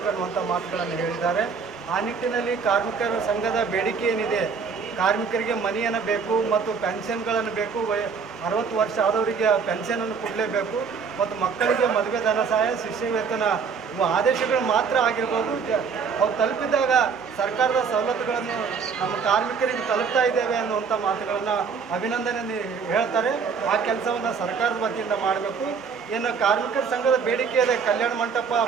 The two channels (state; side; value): quieter; left; 5.9 dB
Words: ಅನ್ನುವಂಥ ಮಾತುಗಳನ್ನು ಹೇಳಿದ್ದಾರೆ. ಆ ನಿಟ್ಟಿನಲ್ಲಿ ಕಾರ್ಮಿಕರ ಸಂಘದ ಬೇಡಿಕೆ ಏನಿದೆ, ಕಾರ್ಮಿಕರಿಗೆ ಮನೆಯನ್ನು ಬೇಕು ಮತ್ತು ಪೆನ್ಷನ್ಗಳನ್ನು ಬೇಕು. 60 ವರ್ಷ ಆದವರಿಗೆ ಪೆನ್ಷನನ್ನು ಕೊಡಲೇಬೇಕು. ಮತ್ತು ಮಕ್ಕಳಿಗೆ ಮದುವೆ ಧನ ಸಹಾಯ, ಶಿಷ್ಯ ವೇತನ ಇವು ಆದೇಶಗಳು ಮಾತ್ರ ಆಗಿರ್ಬೋದು. ಅವು ತಲುಪಿದಾಗ ಸರ್ಕಾರದ ಸವಲತ್ತುಗಳನ್ನು ನಮ್ಮ ಕಾರ್ಮಿಕರಿಗೆ ತಲುಪ್ತಾ ಇದ್ದೇವೆ ಅನ್ನುವಂಥ ಮಾತುಗಳನ್ನು ಅಭಿನಂದನೆ ಹೇಳ್ತಾರೆ. ಆ ಕೆಲಸವನ್ನು ಸರ್ಕಾರದ ವತಿಯಿಂದ ಮಾಡಬೇಕು. ಏನು ಕಾರ್ಮಿಕರ ಸಂಘದ ಬೇಡಿಕೆ ಇದೆ, ಕಲ್ಯಾಣ ಮಂಟಪ